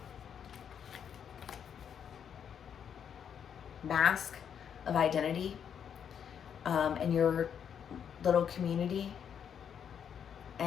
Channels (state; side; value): quieter; right; 8.1 dB